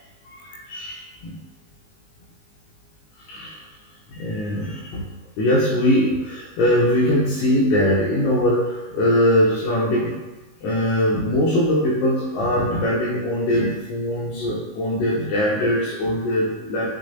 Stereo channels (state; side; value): late; right; 19 ms